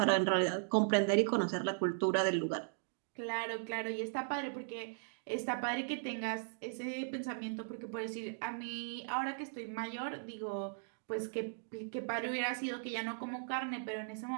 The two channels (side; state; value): left; silent; digital silence